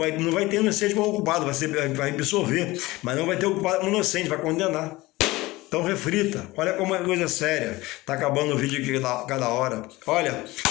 vai ter inocente como ocupado, vai absorver, mas não vai ter ocupado como inocente, vai condenar. Então reflita, olha como é coisa séria. Está acabando o vídeo aqui cada hora. Olha,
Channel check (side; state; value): right; quieter; 20.0 dB